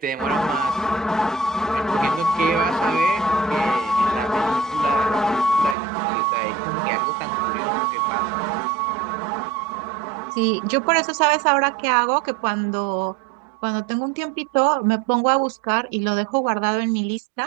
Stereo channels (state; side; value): drops out; left; at 5.8 s